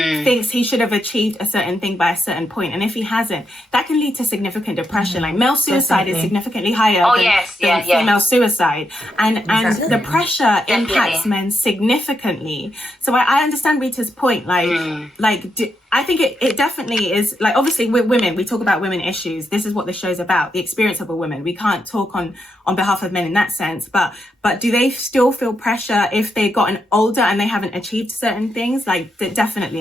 thinks he should have achieved a certain thing by a certain point, and if he hasn't, that can lead to significant depression. Like male suicide is significantly higher than female suicide, and the pressure impacts men significantly. So I understand Rita's point. I think it definitely is, like, obviously with women, we talk about women issues. This is what the show's about, the experience of a woman. We can't talk on behalf of men in that sense, but do they still feel pressure if they've gotten older and they haven't achieved certain things? Like,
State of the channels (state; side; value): normal; both; correlation 0.82